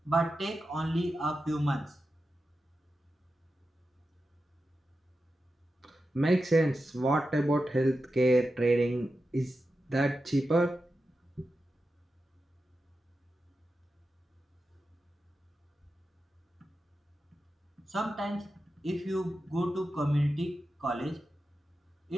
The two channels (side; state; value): both; normal; correlation 0.91